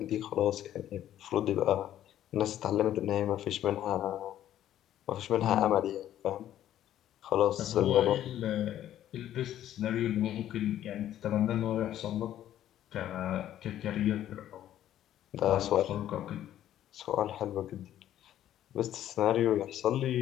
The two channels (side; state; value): right; quieter; 11.9 dB